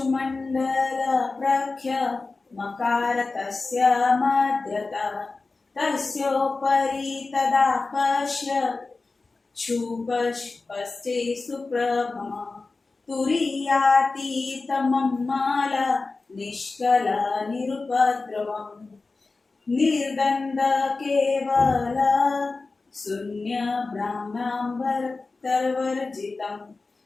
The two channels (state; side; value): quieter; right; 3.8 dB